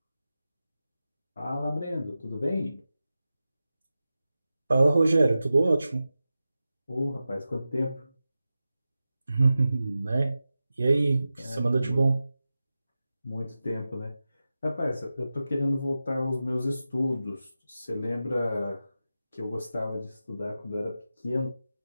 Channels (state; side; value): inverted; both; correlation -0.93